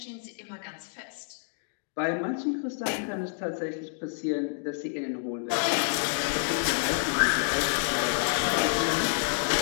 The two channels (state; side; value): silent; right; digital silence